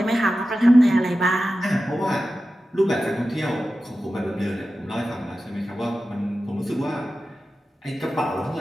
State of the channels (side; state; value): both; normal; correlation 0.93